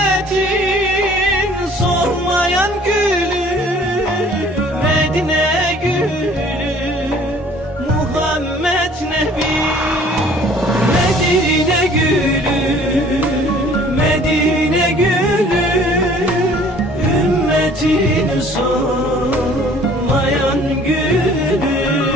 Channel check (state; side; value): normal; both; correlation 0.54